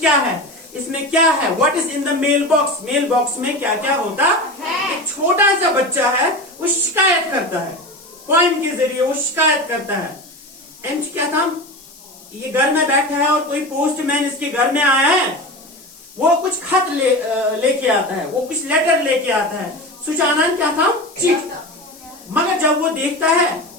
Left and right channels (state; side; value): noise; left; hiss, 22 dB below the sound